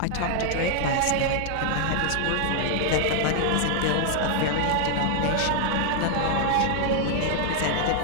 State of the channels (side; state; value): both; different; correlation 0.00